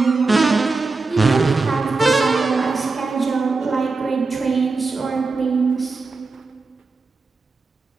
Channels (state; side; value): quieter; left; 3.9 dB